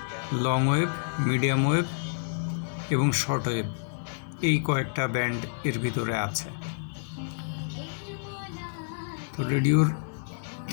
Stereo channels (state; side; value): silent; right; 59 dB below the other